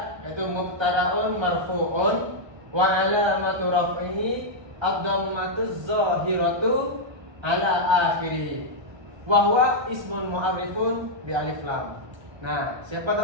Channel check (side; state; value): left; late; 1.3 ms